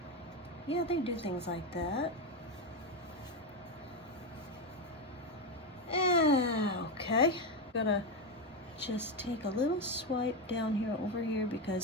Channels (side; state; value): both; normal; correlation 0.11